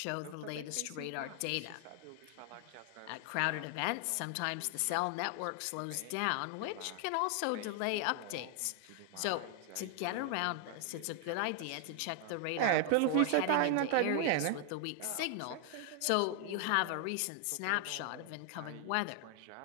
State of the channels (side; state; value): both; different; correlation 0.00